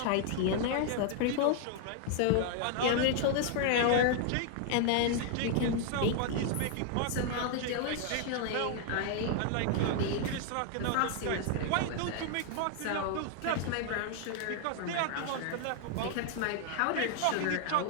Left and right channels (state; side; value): different; both; correlation 0.00